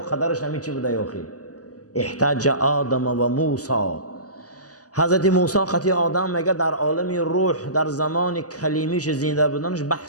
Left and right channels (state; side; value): late; right; 0.67 ms